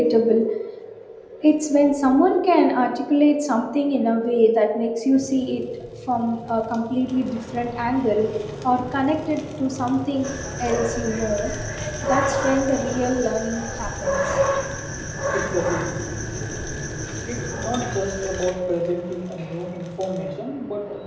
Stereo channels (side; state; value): both; identical; correlation 1.00